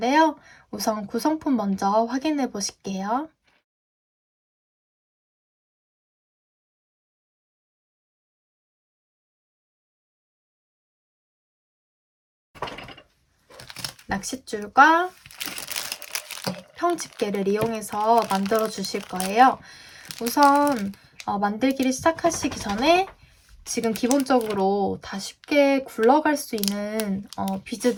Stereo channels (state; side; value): identical; both; correlation 1.00